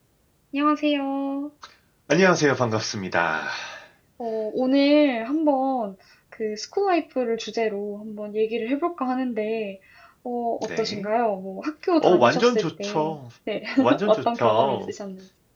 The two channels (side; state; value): both; identical; correlation 1.00